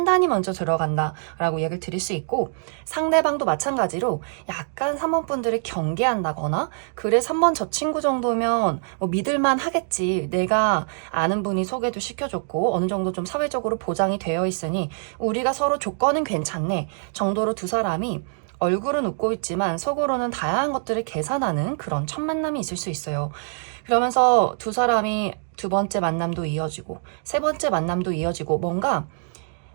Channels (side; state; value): left; silent; digital silence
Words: 먼저 들어간다 라고 얘기를 드릴 수 있고 상대방도 마찬가지로 약간 3번 분들을 경계한다거나 그래 3번 저 친구 정도면 뭐 믿을만 하겠지 내가 아는 분이 소개도 시켜줬고 어느 정도 좀 사회적으로 보장이 되어 있으니 우리가 서로 조건은 괜찮네 정도로 두 사람이 얼굴은 웃고 있지만 속으로는 다양한 것들을 계산하는 그런 첫 만남이 있을 수 있어요. 그러면서 두 사람이 두 번째 만남도 이어지고 세 번째 만남도 이어지고 뭔가